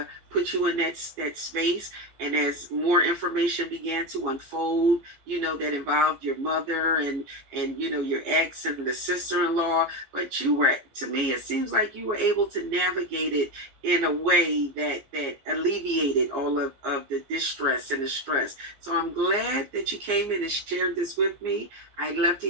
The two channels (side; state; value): left; late; 15 ms